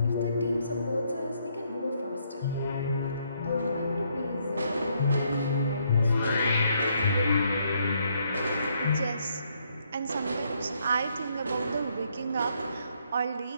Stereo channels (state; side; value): inverted; both; correlation -0.72